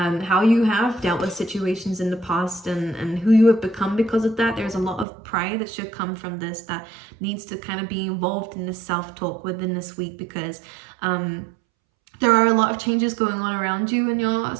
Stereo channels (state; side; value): drops out; left; at 5.1 s